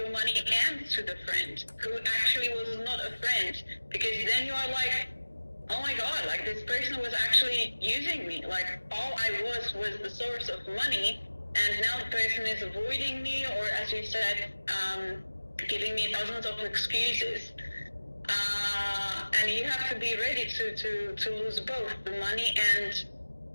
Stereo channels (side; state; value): both; inverted; correlation -1.00